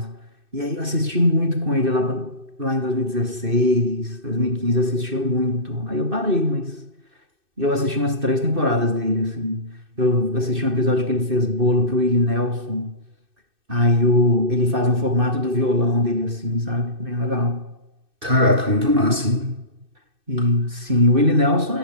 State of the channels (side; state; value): left; late; 2.6 ms